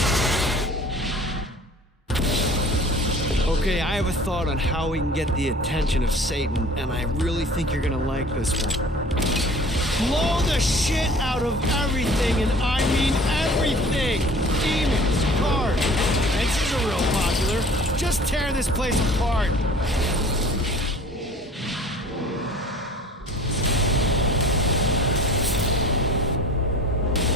Okay, I have a thought on how we can get the attention of Satan, and I really think you're gonna like this one. Blow the shit out of everything, and I mean everything! Demons, cars, fences are real popular. Just tear this place apart.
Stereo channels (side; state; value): both; normal; correlation 0.46